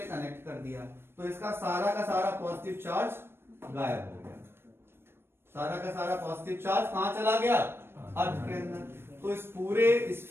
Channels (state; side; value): late; left; 0.11 ms